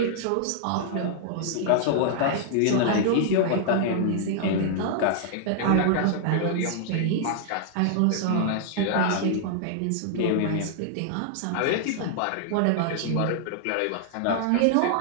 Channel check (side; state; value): both; different; correlation -0.01